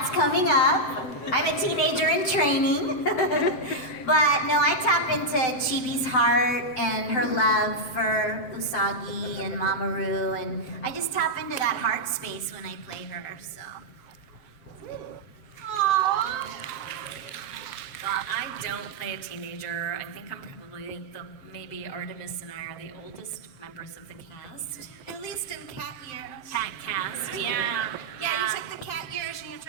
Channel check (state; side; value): late; right; 7.7 ms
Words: coming up. I'm a teenager in training. But no, I tap into Chibi's heart and her love for Usagi and Mamoru, and I just tap into that heart space when I play her, so. Aww. Well, I don't play a teenager. I think I'm probably maybe Artemis and I are the oldest members of the cast. At least in cat years. Cat cast, yeah. Yeah, you take the cat years and you